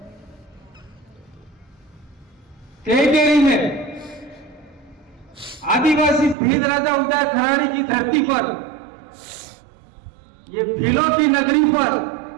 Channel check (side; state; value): left; drops out; at 6.4 s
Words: टेरिटरी में आदिवासी भील राजा उदय खराड़ी की धरती पर, ये भीलों की नगरी पर